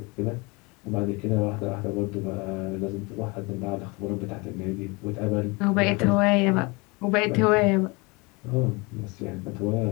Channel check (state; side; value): quieter; right; 27.1 dB